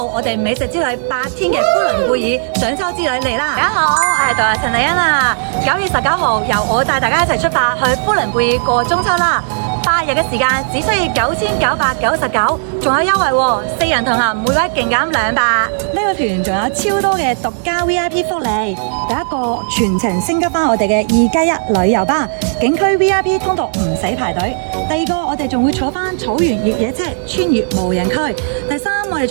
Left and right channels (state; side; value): silent; left; digital silence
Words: 我哋美食之旅8天嘅呼倫貝爾賞秋之旅嚟啦！大家好，我係導遊陳麗欣啊！9月19號，由我帶大家一齊出發去呼倫貝爾過中秋啦！8日嘅時間只需要9999，仲有優惠喎！4人同行，每位勁減200。呢個團仲有超多嘅獨家 VIP 福利。第一個全程升級翻我哋嘅2+1旅遊巴，景區 VIP 通道唔使排隊。第二個，我哋仲會坐翻草原越野車穿越無人區。第三，我哋